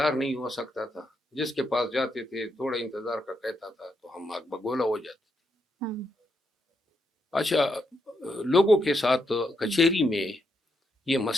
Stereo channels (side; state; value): both; normal; correlation 0.80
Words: نہیں ہو سکتا تھا، جس کے پاس جاتے تھے تھوڑا انتظار کا کہتا تھا تو ہم آگ بگولا ہو جاتے تھے. اچھا، لوگوں کے ساتھ کچہری میں یہ